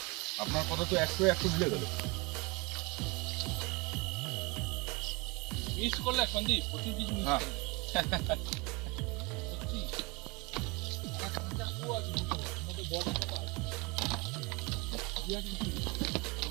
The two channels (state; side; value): quieter; left; 27.1 dB